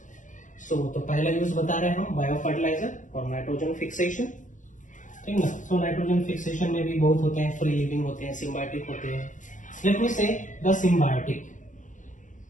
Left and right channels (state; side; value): late; right; 0.37 ms